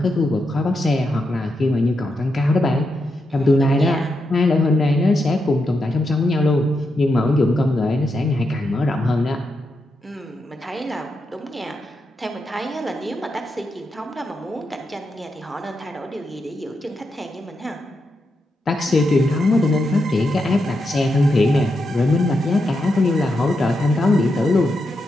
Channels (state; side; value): normal; both; correlation 0.85